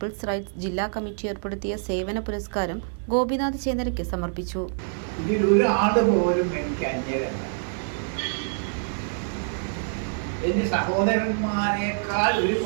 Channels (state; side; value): silent; left; digital silence